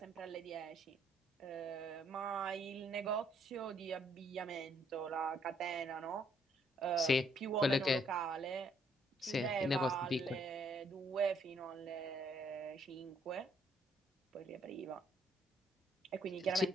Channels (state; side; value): normal; both; correlation 0.69